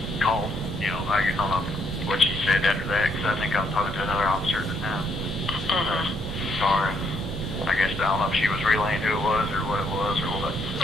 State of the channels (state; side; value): normal; both; correlation 0.72